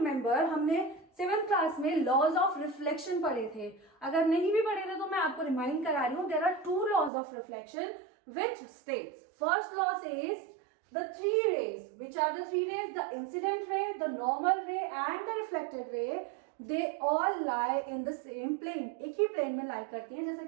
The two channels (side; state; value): left; drops out; at 7.1 s